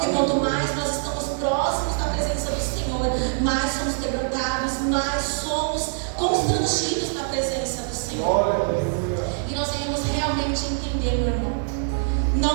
quanto mais nós estamos próximos da presença do Senhor, mais somos quebrantados, mais somos constrangidos na presença do Senhor. E nós devemos realmente entender, meu irmão.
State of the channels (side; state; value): left; silent; digital silence